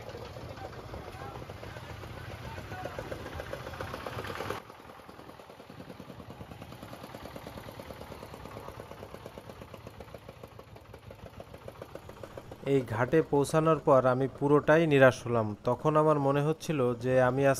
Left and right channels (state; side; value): identical; both; correlation 1.00